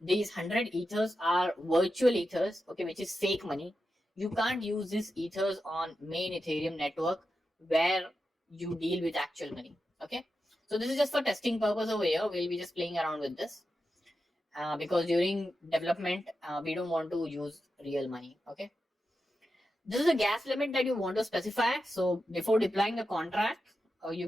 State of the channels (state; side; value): normal; both; correlation 0.89